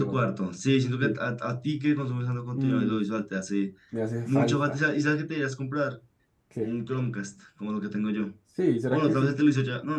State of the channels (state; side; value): identical; both; correlation 1.00